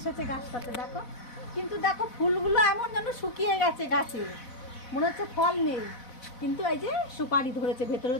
গাছটাতে দেখো, কিন্তু দেখো ফুলগুলো এমন যেন শুকিয়ে গেছে গাছে, মনে হচ্ছে ফল নেই, কিন্তু এই যে সুপারি ধরেছে, ভেতরে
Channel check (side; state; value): right; late; 4.0 ms